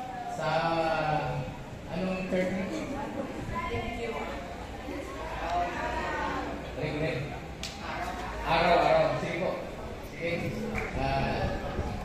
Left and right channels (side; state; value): both; identical; correlation 1.00